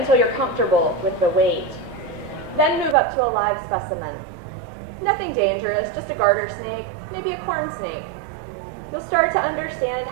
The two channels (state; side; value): drops out; left; at 3.0 s